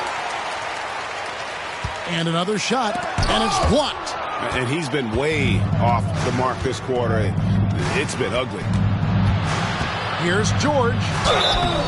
And another shot, and it's blocked. And he's been way off the mark this quarter. It's been ugly. Here's George.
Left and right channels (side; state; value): both; identical; correlation 1.00